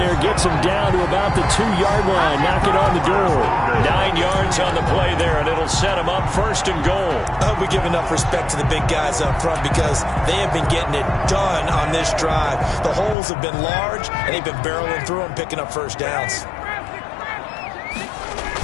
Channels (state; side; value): drops out; right; at 13.2 s